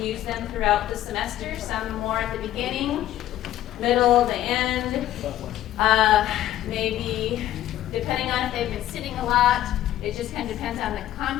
them throughout the semester, some more at the beginning, middle, the end. Maybe, depending on if they've been sitting a lot, it just kind of depends on the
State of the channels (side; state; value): right; quieter; 13.2 dB